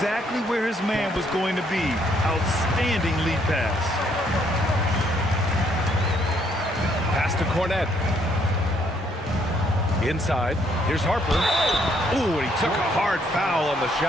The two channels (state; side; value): normal; both; correlation 0.69